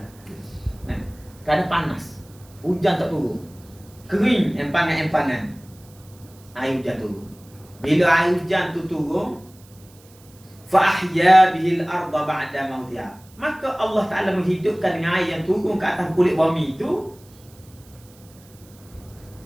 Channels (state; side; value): noise; right; hiss, 26 dB below the sound